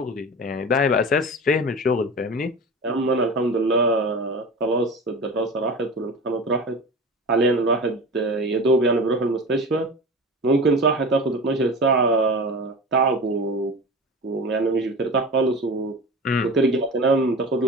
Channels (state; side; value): normal; both; correlation 0.32